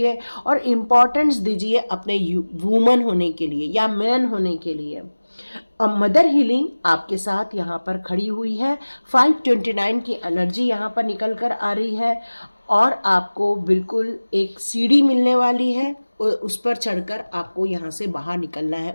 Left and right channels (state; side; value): inverted; both; correlation -1.00